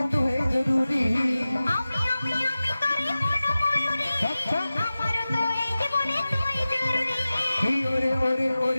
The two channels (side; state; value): both; inverted; correlation -0.96